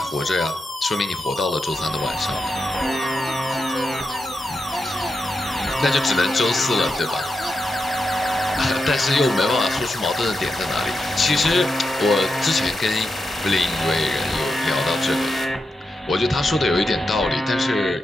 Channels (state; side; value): normal; both; correlation 0.88